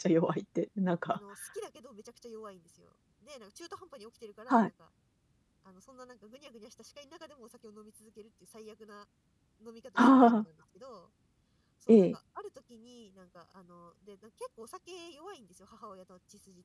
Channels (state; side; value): identical; both; correlation 1.00